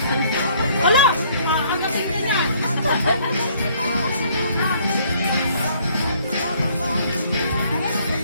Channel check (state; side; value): inverted; both; correlation -0.62